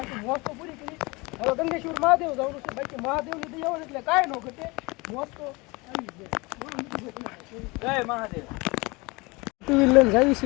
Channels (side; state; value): right; quieter; 25.3 dB